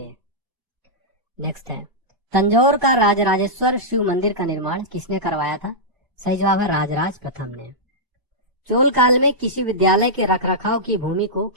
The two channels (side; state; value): left; late; 1.0 ms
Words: नेक्स्ट है तंजौर का राजराजेश्वर शिव मंदिर का निर्माण किसने करवाया था? सही जवाब है राजराज प्रथम ने। चोल काल में किसी विद्यालय के रखरखाव की भूमि को